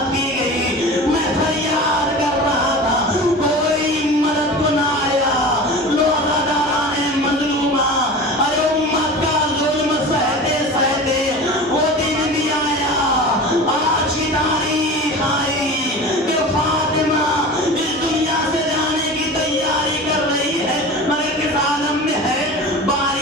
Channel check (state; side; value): normal; both; correlation 0.34